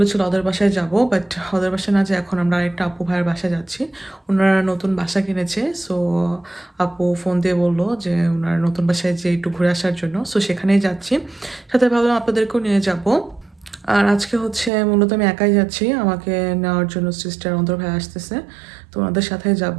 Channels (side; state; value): left; drops out; at 14.7 s